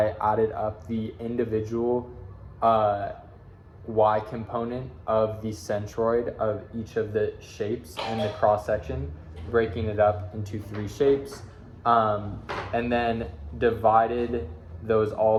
added up the individual y component of the centroid of each of the shapes in the cross section, breaking it up into 3 shapes, and then divided those all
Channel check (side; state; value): both; identical; correlation 1.00